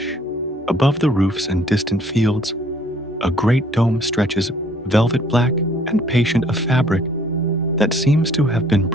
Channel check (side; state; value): both; normal; correlation 0.60